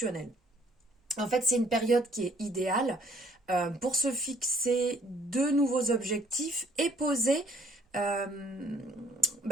En fait, c'est une période qui est idéale pour se fixer de nouveaux objectifs et euh,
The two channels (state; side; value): normal; both; correlation 0.61